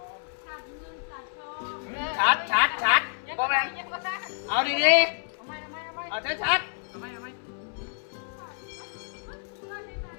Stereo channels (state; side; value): silent; right; 59 dB below the other